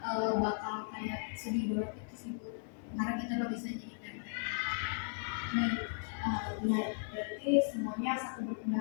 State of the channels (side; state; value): right; silent; 53 dB below the other